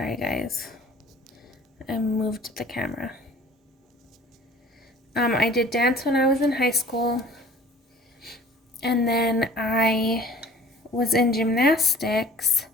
guys, I moved the camera. I did dance when I was in high school, and then I was in gymnastics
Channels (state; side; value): normal; both; correlation 0.49